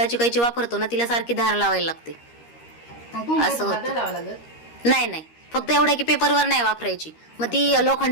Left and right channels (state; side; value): late; right; 13 ms